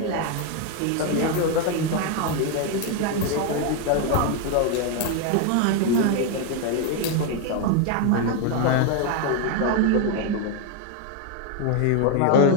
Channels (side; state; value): both; different; correlation 0.01